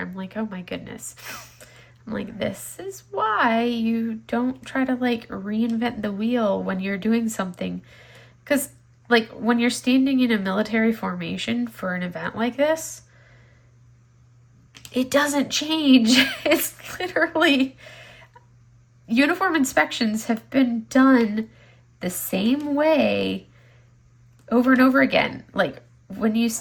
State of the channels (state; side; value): identical; both; correlation 1.00